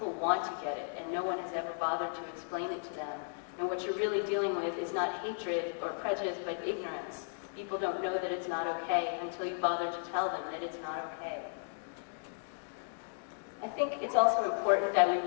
want to get it, and no one has ever bothered to explain it to them. And what you're really dealing with is not hatred or prejudice, but ignorance. People don't know that it's not okay until you bother to tell them that it's not okay. I think it's also important that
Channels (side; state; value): right; silent; digital silence